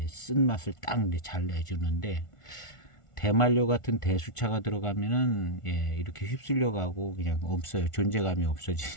쓴 맛을 딱 잘 내주는데, 대만료 같은 대수차가 들어가면은 이렇게 휩쓸려 가고 그냥 없어요. 존재감이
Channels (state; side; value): late; right; 1.5 ms